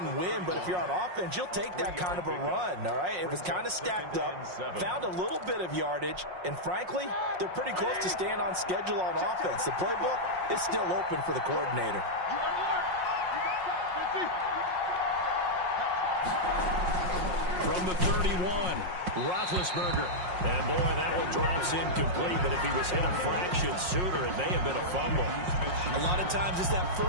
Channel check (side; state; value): left; late; 5.5 ms